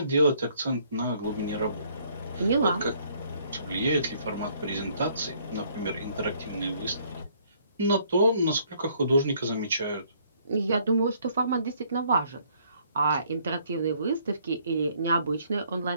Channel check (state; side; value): inverted; both; correlation -0.64